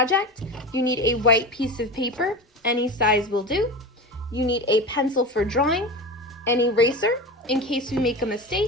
you need a white piece of paper, any size will do. You need a pencil for drawing, an eraser in case we make a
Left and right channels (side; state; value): both; normal; correlation 0.27